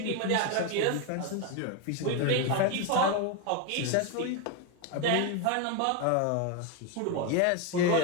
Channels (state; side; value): different; both; correlation 0.02